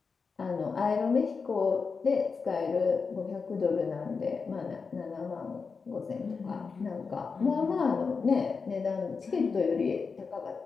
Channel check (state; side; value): quieter; right; 5.0 dB